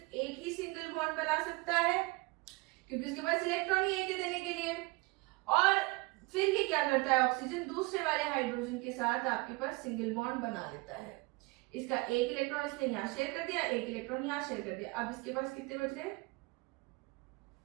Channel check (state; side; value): quieter; left; 24.8 dB